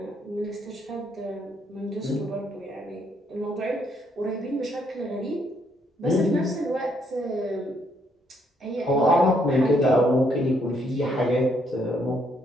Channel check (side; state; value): both; normal; correlation 0.71